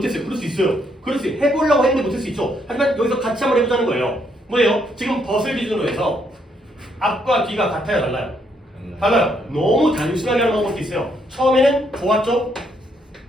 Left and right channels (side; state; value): both; normal; correlation 0.73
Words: 그럴 수 있어요. 그럴 수 있어요. 해보려고 했는데 못할 수 있죠. 하지만 여기서 같이 한번 해보자는 거예요. 뭐예요? 지금 벗을 기준으로 해서 앞과 뒤가 같아요? 달라요? 달라요. 너무 단순하게 하는 방법도 있어요. 처음에는 좋았죠?